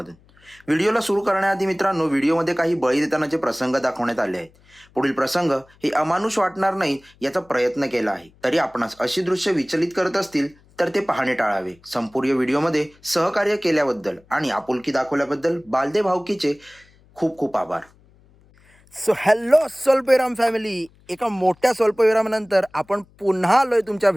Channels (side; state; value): left; noise; hum, 30 dB below the sound